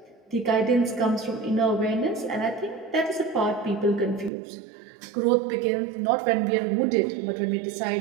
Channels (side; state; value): left; drops out; at 4.3 s